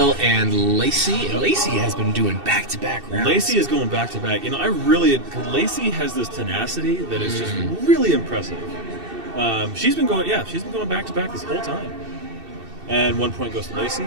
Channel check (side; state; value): left; late; 2.7 ms